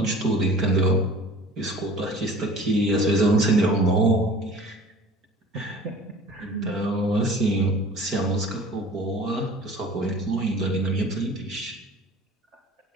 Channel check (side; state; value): both; normal; correlation 0.44